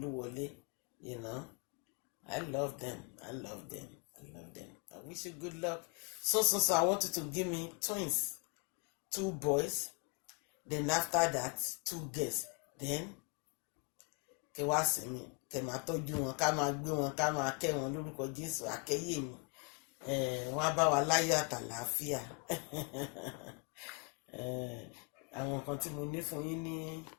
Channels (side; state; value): right; quieter; 32.6 dB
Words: I love them. I wish you good luck. So I want you to give me twins. 2 boys. Then after that, 2 girls. Then kẹ wá sí mi, kẹ máa tọ́jú wọn, ká máa gbé wọn, ká máa kẹ́ wọn lórúkọ Jésù, àkẹ́yè mi. wọ́n á bá wa láyọ̀ àtàlàáfíà. Àwọn nǹkan tí mo ní fún yín ní